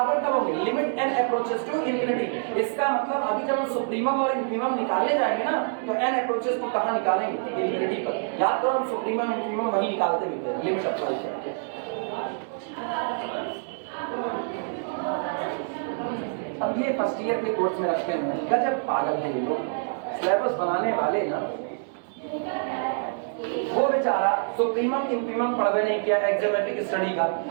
कब होंगे, limit n approaches to infinity. इसका मतलब अभी जब हम सुप्रीमम और इन्फीमम निकालने जाएंगे ना, तो n अप्रोचेस को कहां निकालेंगे, इंफिनिटी पर। याद करो हम सुप्रीमम इन्फीमम वही निकालते भी थे, लिमिट अप्लाई करके। अब ये फर्स्ट ईयर के कोर्स में रखे हुए हैं, गजब पागल है ये लोग, सिलेबस बनाने वाले ना। वो बेचारा सुप्रीमम इन्फीमम पढ़वे नहीं किया एक्सोमेट्रिक स्टडी का,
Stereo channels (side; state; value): left; silent; 61 dB below the other